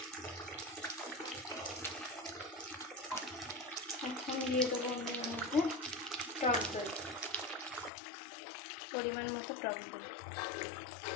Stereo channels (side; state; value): right; drops out; at 7.9 s